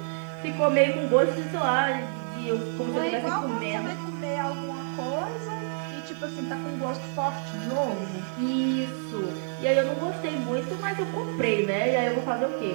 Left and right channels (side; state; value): left; silent; digital silence